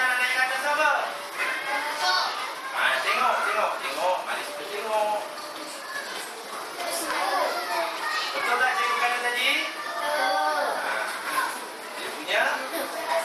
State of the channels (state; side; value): identical; both; correlation 1.00